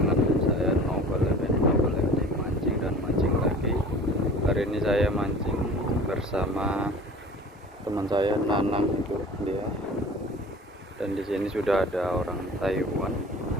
saya Novel lagi mancing dan mancing lagi. Hari ini saya mancing bersama teman saya Nanang, itu dia. Dan di sini sudah ada orang Taiwan.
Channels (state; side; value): normal; both; correlation 0.43